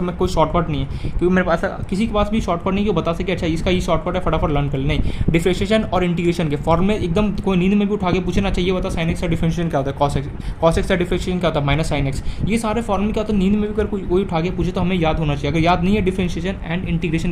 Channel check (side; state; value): both; identical; correlation 1.00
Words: मैं कोई शॉर्टकट नहीं है, क्योंकि मेरे पास किसी के पास भी शॉर्टकट नहीं कि वो बता सके अच्छा इसका ये शॉर्टकट है फटाफट लर्न कर ले। नहीं, डिफरेंशिएशन और इंटीग्रेशन के फॉर्मूले एकदम कोई नींद में भी उठा के पूछना चाहिए, बता साइन एक्स का डिफरेंशिएशन क्या होता है, कॉस एक्स का डिफरेंशिएशन क्या होता है माइनस साइन एक्स, ये सारे फॉर्मूले क्या होता है नींद में भी अगर कोई उठा के पूछे तो हमें याद होना चाहिए। अगर याद नहीं है डिफरेंशिएशन एंड इंटीग्रेशन